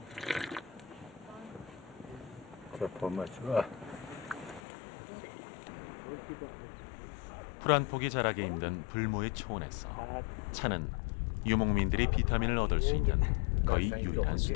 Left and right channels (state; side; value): drops out; right; at 4.6 s